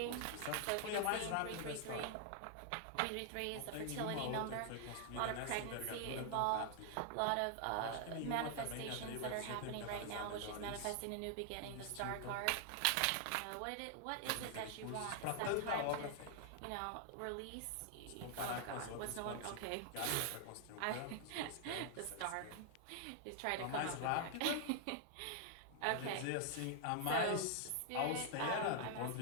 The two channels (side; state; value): both; different; correlation 0.00